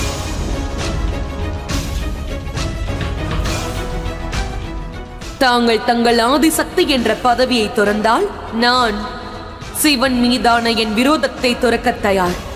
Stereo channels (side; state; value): both; identical; correlation 1.00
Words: தாங்கள் தங்கள் ஆதிசக்தி என்ற பதவியை துறந்தால் நான் சிவன் மீதான என் விரோதத்தை துறக்க தயார்.